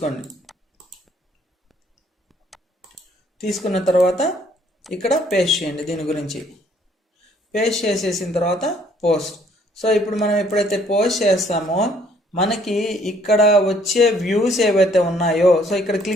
తీసుకున్న తర్వాత ఇక్కడ పేస్ట్ చేయండి. దీని గురించి పేస్ట్ చేసేసిన తర్వాత పోస్ట్. సో ఇప్పుడు మనం ఎప్పుడైతే పోస్ట్ చేస్తామో మనకి ఇక్కడ వచ్చే వ్యూస్ ఏవైతే ఉన్నాయో, సో ఇక్కడ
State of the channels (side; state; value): both; normal; correlation 0.63